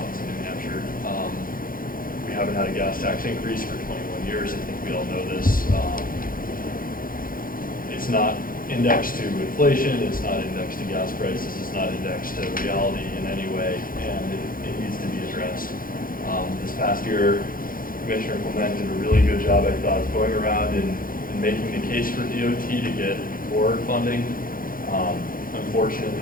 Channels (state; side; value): late; right; 0.41 ms